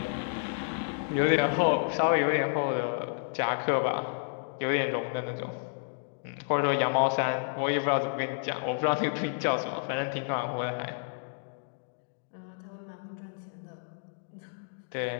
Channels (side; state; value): right; silent; digital silence